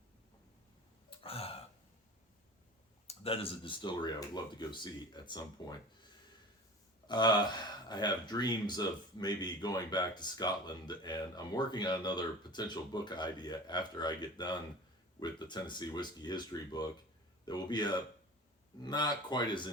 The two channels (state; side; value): normal; both; correlation 0.37